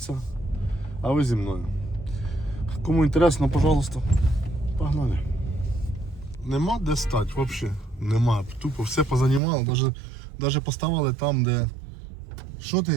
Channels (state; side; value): drops out; left; at 9.4 s